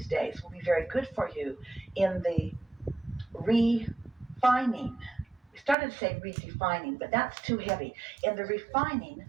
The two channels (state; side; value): drops out; left; at 5.8 s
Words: days will be very good for you in the refining. We started to say redefining, but that's too heavy. In the refining